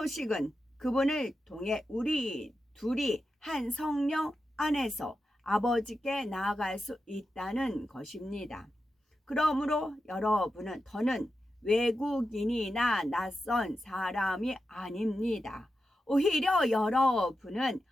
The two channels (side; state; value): both; normal; correlation 0.89